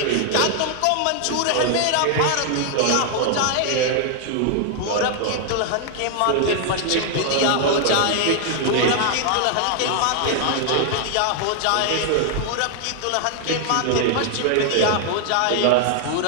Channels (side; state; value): both; different; correlation 0.00